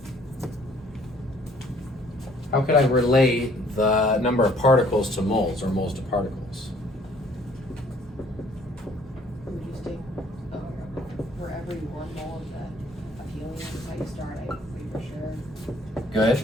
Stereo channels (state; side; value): normal; both; correlation 0.59